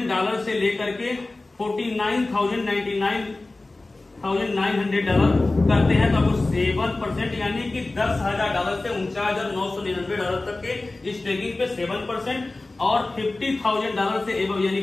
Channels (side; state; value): right; quieter; 3.1 dB